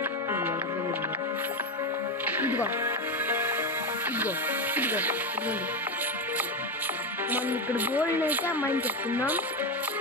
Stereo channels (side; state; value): both; normal; correlation 0.13